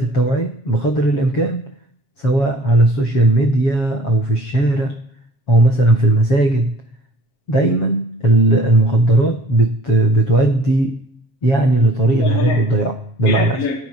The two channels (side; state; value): right; late; 7.3 ms